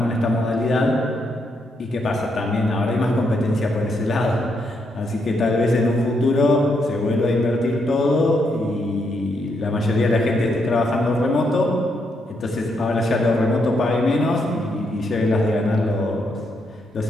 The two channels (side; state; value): both; normal; correlation 0.78